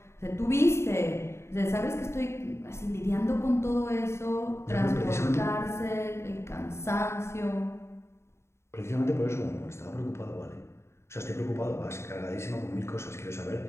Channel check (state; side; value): late; right; 0.13 ms